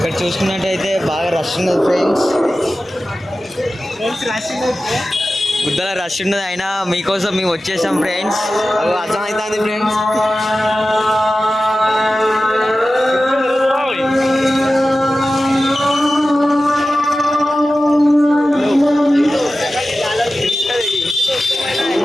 చూసుకున్నట్టయితే బాగా రష్ ఉన్నది ఫ్రెండ్స్. గుద్దల రష్ ఉన్నది, అయినా మీకోసం మేము వచ్చేసాం ఫ్రెండ్స్. అర్థమవుతుంది ఫ్రెండ్స్.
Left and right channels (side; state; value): both; normal; correlation 0.95